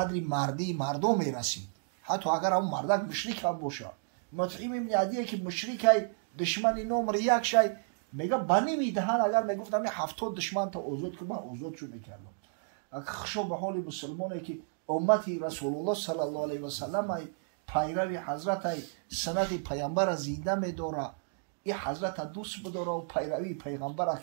مردی مردم میرسید، حتی اگر هم مردک مشرک هم باشه. مطعم ابن عدی که مشرک دشمن نمره یک شای میگه بنی میدهن، اگر میگفتم 70 دشمن تا آزاد کنم من آزاد شو میکردم. خشو به حال مسلمانی که امتی رسول الله صلی الله علیه و سلم پیروی حضرت سنت پیامبر زنده میداره، این حضرت دوست بداره و پیروی پیغمبر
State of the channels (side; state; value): left; silent; digital silence